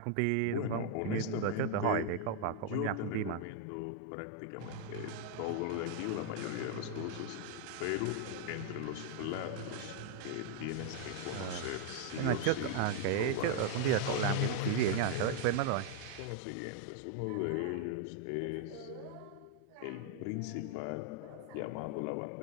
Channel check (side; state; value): both; different; correlation 0.00